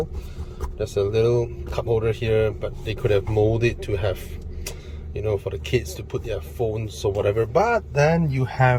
There's a little cup holder here, but they could have molded it to have, you know, for the kids to put their phones or whatever. But then you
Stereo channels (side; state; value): both; identical; correlation 1.00